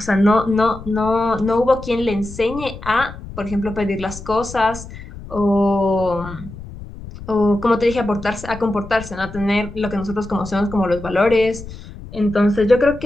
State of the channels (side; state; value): left; noise; rumble, 14 dB below the sound